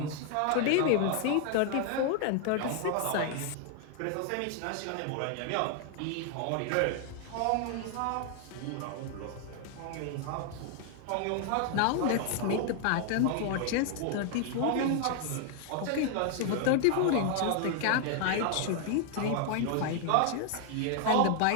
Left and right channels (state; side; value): different; both; correlation 0.00